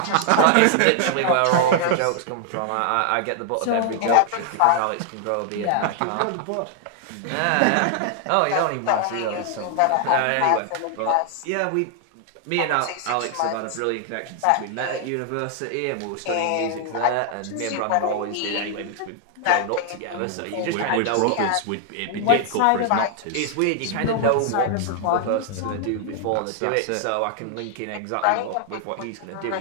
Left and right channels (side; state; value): both; different; correlation 0.00